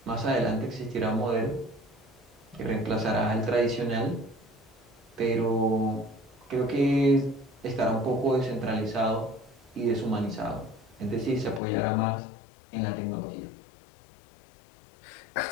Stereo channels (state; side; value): drops out; right; at 11.6 s